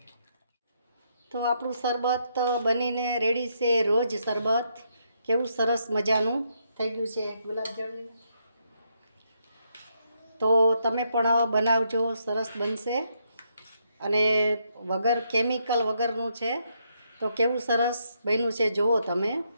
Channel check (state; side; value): inverted; both; correlation -0.77